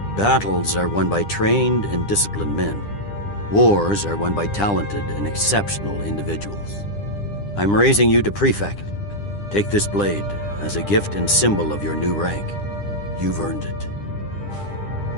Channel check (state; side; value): late; right; 9.9 ms